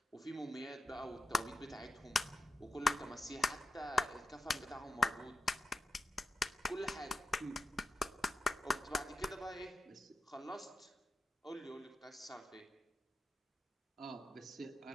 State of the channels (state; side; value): normal; both; correlation 0.86